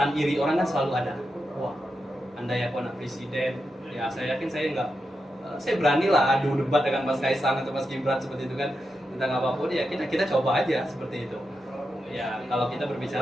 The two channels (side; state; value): both; normal; correlation 0.88